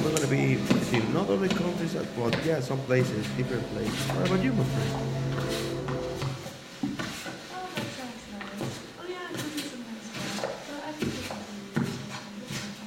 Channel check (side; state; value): both; identical; correlation 1.00